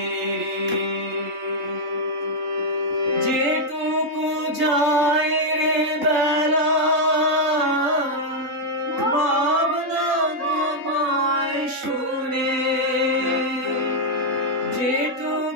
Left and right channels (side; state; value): left; late; 3.7 ms